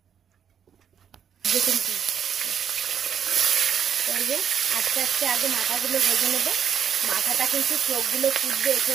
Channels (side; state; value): left; quieter; 8.2 dB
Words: আস্তে আস্তে আগে মাথাগুলো ভেজে নেবো। মাথাটা কিন্তু চোখগুলো ফুটবে, এসে